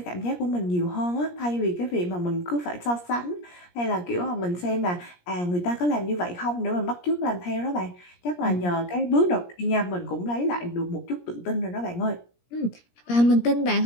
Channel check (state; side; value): late; right; 17 ms